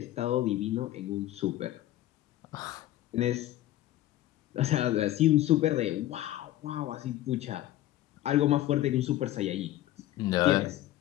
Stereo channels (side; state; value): right; quieter; 14.4 dB